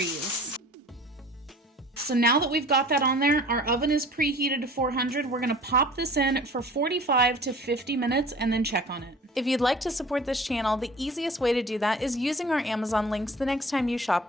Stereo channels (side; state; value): both; normal; correlation 0.45